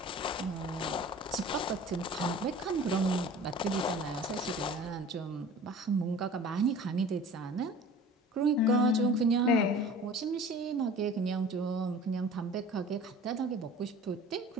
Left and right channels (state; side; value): normal; both; correlation 0.43